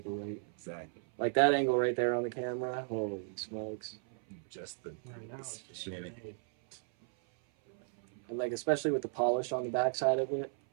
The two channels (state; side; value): silent; left; 54 dB below the other